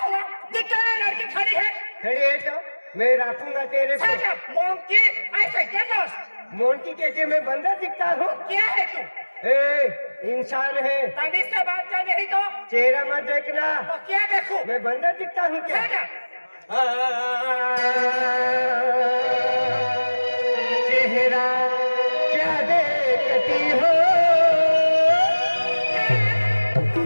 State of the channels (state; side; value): inverted; both; correlation -1.00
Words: दिखता है लड़की खड़ी है। खड़ी है तो मैं रखूंगा तेरे को। मोंकी ऐसे क्या दोस्त? मोंकी कैसे मैं बंदर दिखता हूँ? क्या है तू? ए इंसान है। तमीज से बात कर नहीं तो चेहरा मत देखना। तो क्या देखूं? मैं बंदर दिखता हूँ क्या? चेहरा क्या देखती हो,